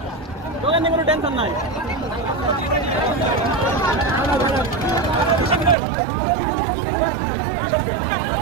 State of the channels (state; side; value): drops out; left; at 5.8 s